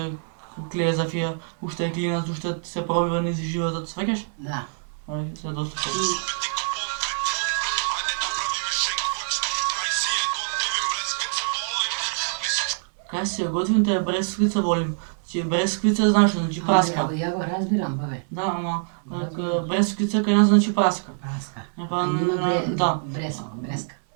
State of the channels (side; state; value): left; silent; 61 dB below the other